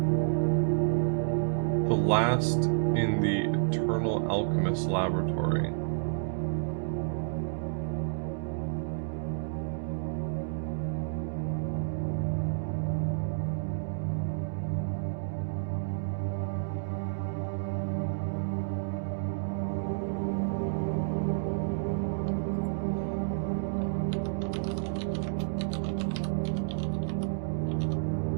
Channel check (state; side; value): silent; left; digital silence